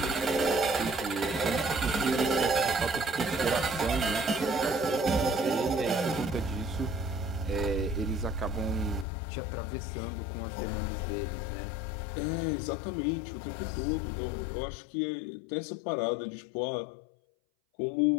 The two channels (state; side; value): drops out; right; at 9.1 s